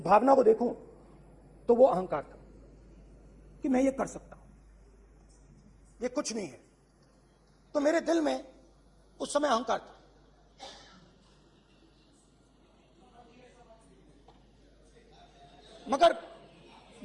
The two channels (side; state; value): both; identical; correlation 1.00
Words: को देखूं तो वो अहंकार था कि मैं ये कर सकता हूं, ये कुछ नहीं है। तो मेरे दिल में उस समय अहंकार था।